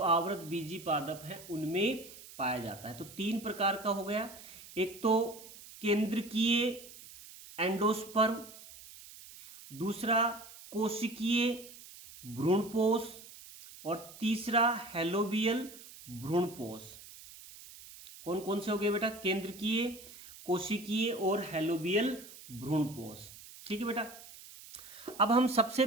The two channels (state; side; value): noise; right; hiss, 17 dB below the sound